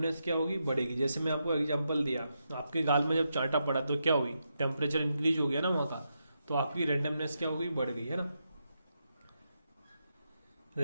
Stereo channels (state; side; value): inverted; both; correlation -0.84